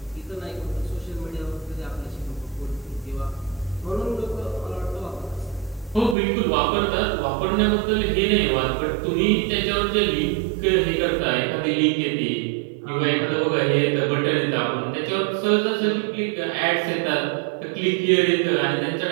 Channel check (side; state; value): left; drops out; at 6.2 s